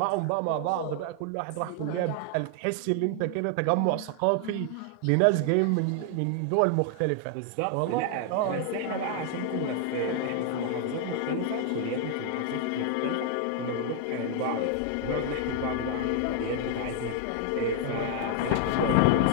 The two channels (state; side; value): different; both; correlation 0.00